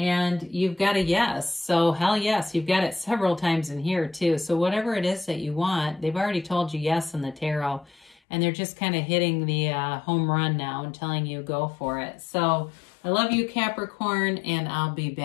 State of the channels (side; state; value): right; drops out; at 8.2 s